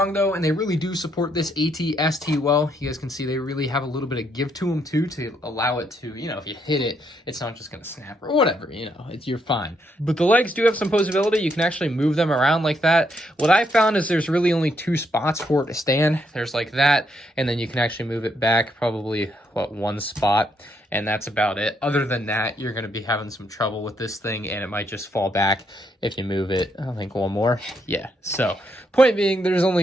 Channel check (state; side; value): normal; both; correlation 0.75